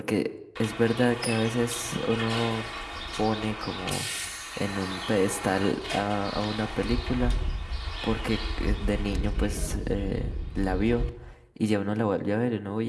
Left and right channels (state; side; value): identical; both; correlation 1.00